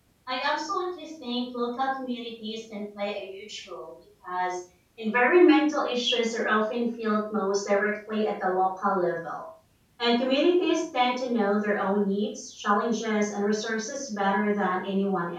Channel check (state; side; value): identical; both; correlation 1.00